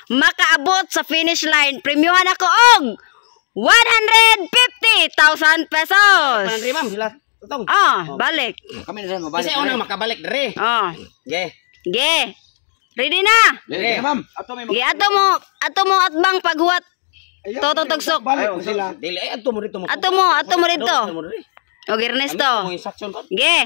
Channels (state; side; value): silent; right; digital silence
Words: makaabot sa finish line, premyohan ako og 150,000 pesos. Panandri ma'am sila. Tutong. Balik. Kami na rin mabalik. Kasi unang makabalik dere. Ge. Ge. Ready na? Dere ma'am. Ge, ato mo atbang paghuwat. Totong tugsok. Balik ko sila. Dili ay adto mo dito mo. Ato mo rito. Og Ernesto. Mo instruction ko.